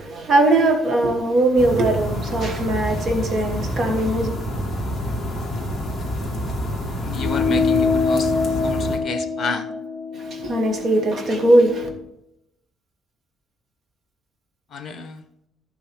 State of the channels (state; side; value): normal; both; correlation 0.71